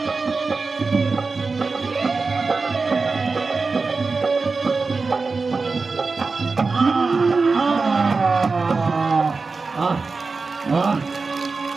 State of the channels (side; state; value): left; quieter; 4.2 dB